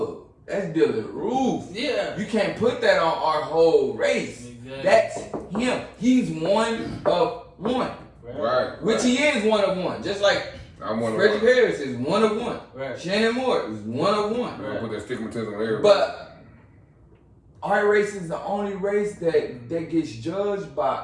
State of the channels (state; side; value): identical; both; correlation 1.00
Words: that's Dylan Roof. Yeah. You can't put that on our whole race. Exactly. That's him. He's one of one. Right. Which he is one of one. Just like Reggie Harris is one of one. Right. Shannon Moore is one of one. Right. Put that stigmatism on everybody. But our race is the only race that gets judged